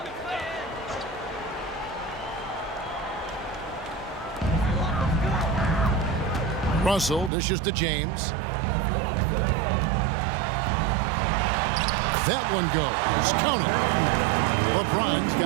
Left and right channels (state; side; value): drops out; left; at 7.3 s